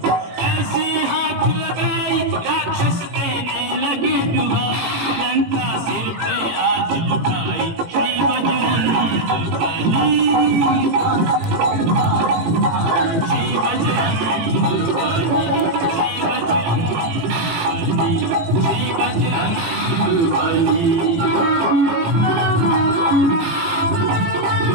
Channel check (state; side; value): late; left; 17 ms